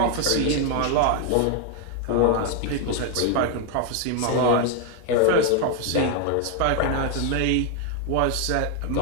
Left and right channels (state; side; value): different; both; correlation 0.01